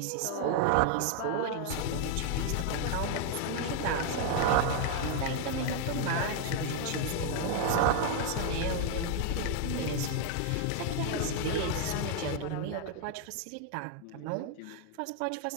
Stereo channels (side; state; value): both; different; correlation 0.00